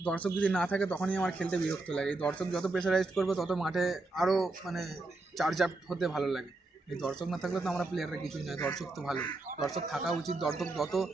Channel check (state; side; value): quieter; left; 3.1 dB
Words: দর্শক যদি না থাকে তখনই আমার খেলতে বিরক্ত লাগে। এই দর্শক যত প্রেশারাইজড করবে তত মাঠে আরও মানে চার্জ আপ হতে ভালো লাগে। এই দর্শক না থাকলে তো আমরা প্লেয়াররা কিছুই নয়, দর্শক তো ভালো, দর্শক থাকা উচিত। দর্শক যত